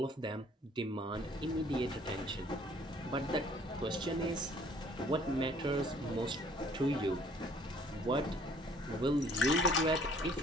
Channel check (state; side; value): normal; both; correlation 0.58